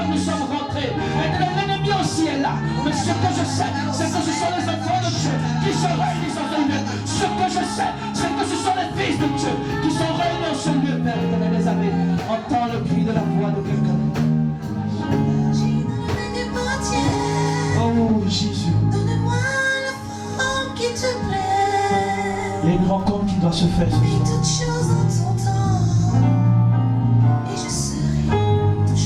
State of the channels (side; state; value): both; identical; correlation 1.00